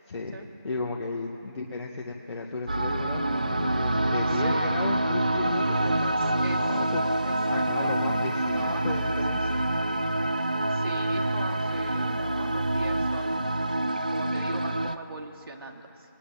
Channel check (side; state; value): both; inverted; correlation -0.83